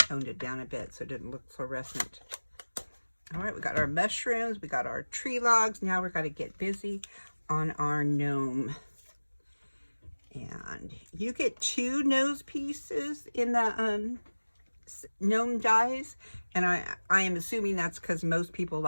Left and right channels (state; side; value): inverted; both; correlation -1.00